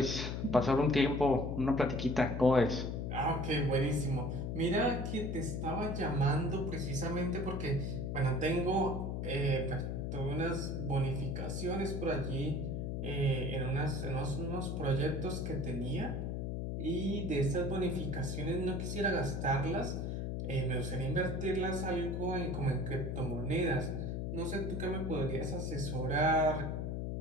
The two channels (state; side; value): noise; left; hum, 2 dB below the sound